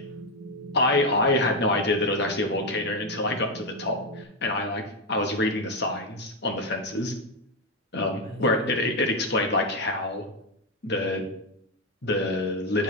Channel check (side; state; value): both; normal; correlation 0.07